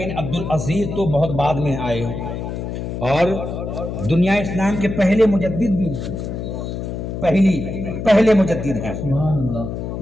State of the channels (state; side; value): noise; left; hum, 5 dB below the sound